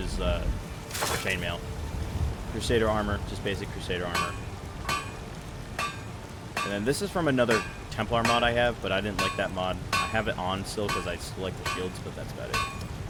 chainmail. Crusader armor, just basic Crusader armor. And then this is from another Templar mod I have, but I didn't like that mod. I have it on still because I still like the shields, but that's about it.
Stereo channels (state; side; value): identical; both; correlation 1.00